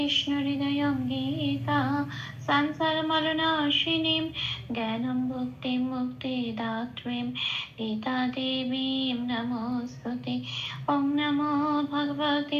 হৃদয় গীতা সংসার মরণাশিনীম জ্ঞানম ভক্তি মুক্তি দাত্রীম গীতা দেবীম নমস্তুতে। ওম নমো ভগবতে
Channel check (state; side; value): identical; both; correlation 1.00